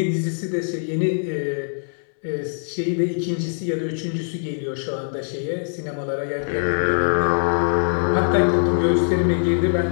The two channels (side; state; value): right; silent; digital silence